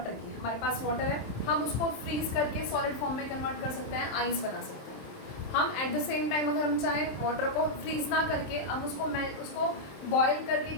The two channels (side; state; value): right; late; 27 ms